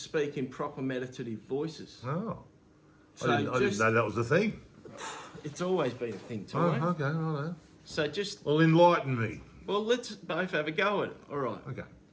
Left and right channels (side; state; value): both; identical; correlation 1.00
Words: in proper meditative voices. Oh, So I didn't know that was the thing. It's always been a thing, Oh, Tommo. okay, righto. So just, Well, enlighten me. well, let's both have a go at it. All right. Okay.